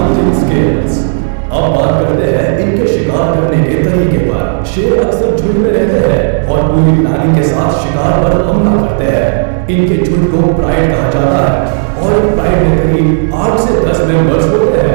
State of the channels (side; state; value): left; silent; 73 dB below the other